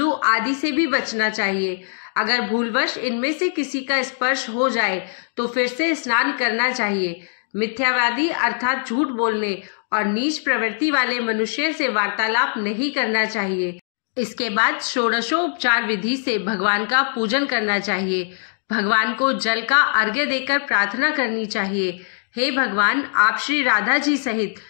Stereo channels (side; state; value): right; silent; digital silence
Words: आदि से भी बचना चाहिए। अगर भूलवश इनमें से किसी का स्पर्श हो जाए तो फिर से स्नान करना चाहिए। मिथ्यावादी अर्थात झूठ बोलने और नीच प्रवृत्ति वाले मनुष्य से वार्तालाप नहीं करना चाहिए। इसके बाद षोडशोपचार विधि से भगवान का पूजन करना चाहिए। भगवान को जल का अर्घ्य देकर प्रार्थना करनी चाहिए, हे भगवान, आप श्री राधा जी सहित